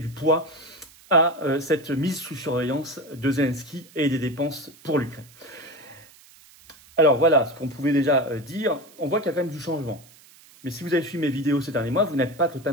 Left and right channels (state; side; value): noise; right; hiss, 25 dB below the sound